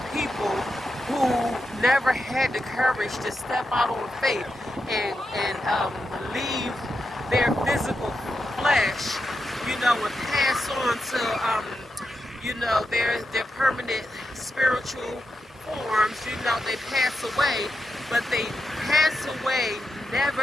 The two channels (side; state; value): both; normal; correlation 0.86